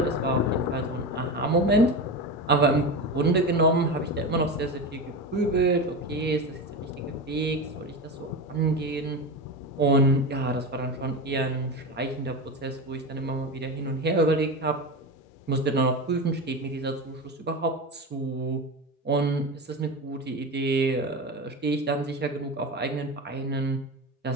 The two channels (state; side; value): normal; both; correlation 0.22